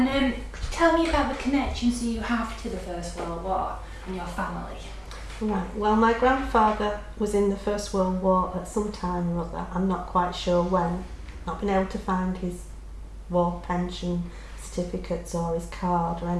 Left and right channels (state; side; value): identical; both; correlation 1.00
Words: could you tell me about the connections you have to the First World War and your family? Right, well, my grandfather was in the First World War at some time or other. I'm not quite sure when. Not been able to find his war pension certificates or his card or